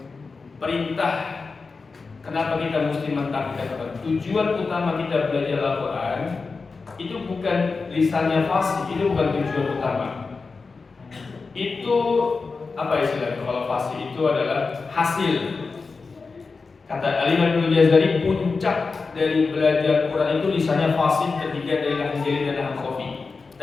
Perintah kenapa kita mesti mentaati Al-Quran? Tujuan utama kita belajar Al-Quran itu bukan lisannya fasih, itu bukan tujuan utama. Itu apa istilahnya? Kalau fasih itu adalah hasil. Kata Al-Imam Ibnu Jazari, puncak dari belajar Quran itu lisannya fasih, terhindar dari lahn jali dan lahn khafi,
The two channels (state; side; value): quieter; right; 4.4 dB